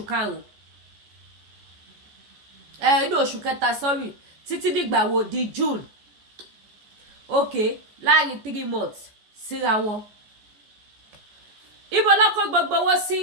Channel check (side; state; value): left; late; 14 ms